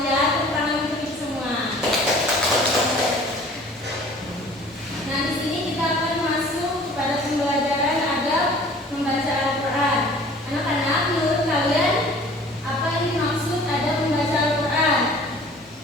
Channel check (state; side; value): normal; both; correlation 0.49